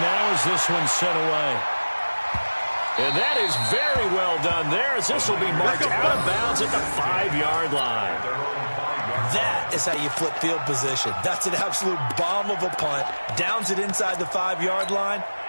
now as this one's sent away. And that is very well done there as this will be marked out of bounds at the 5-yard line. That is how you flip field position. That's an absolute bomb of a punt. Downs it inside the 5-yard line.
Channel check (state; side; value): inverted; both; correlation -1.00